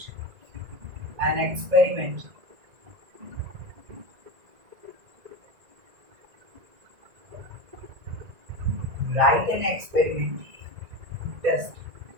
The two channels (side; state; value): left; late; 1.9 ms